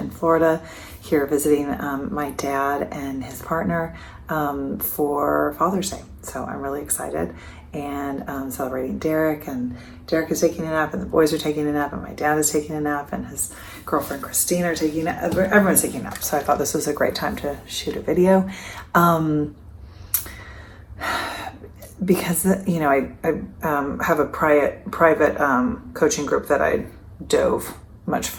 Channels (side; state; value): both; identical; correlation 1.00